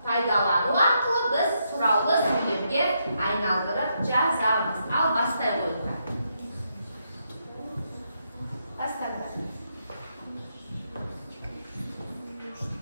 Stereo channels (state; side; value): inverted; both; correlation -0.79